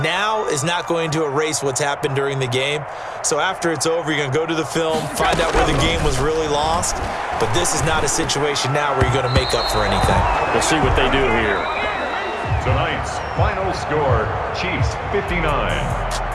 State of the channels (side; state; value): both; identical; correlation 1.00